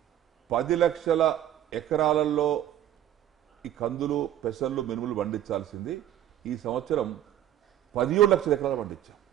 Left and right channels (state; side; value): quieter; left; 11.7 dB